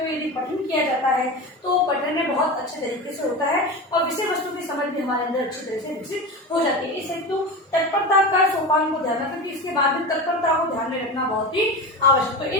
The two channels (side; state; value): both; normal; correlation 0.26